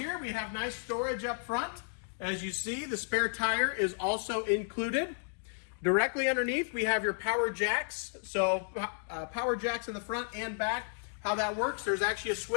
we have nice storage up front. As you see, the spare tire is also included. Directly underneath, we have your power jacks. So power jacks in the front and back. How that works, there's actually a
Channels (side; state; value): right; silent; digital silence